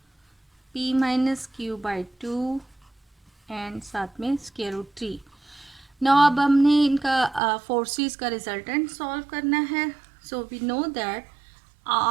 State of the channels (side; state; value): left; drops out; at 7.4 s